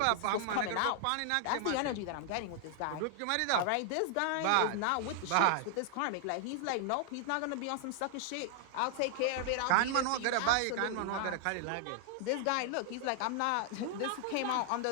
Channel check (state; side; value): different; both; correlation 0.00